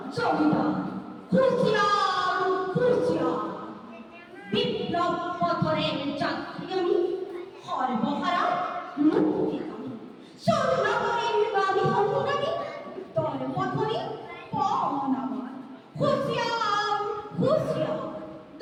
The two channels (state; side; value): identical; both; correlation 1.00